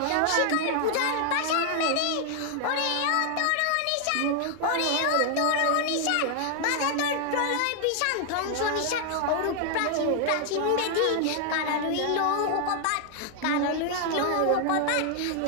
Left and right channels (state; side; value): different; both; correlation 0.00